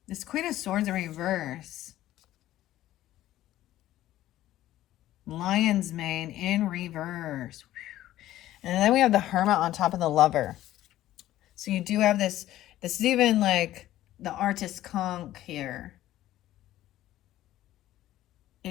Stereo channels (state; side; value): quieter; right; 14.1 dB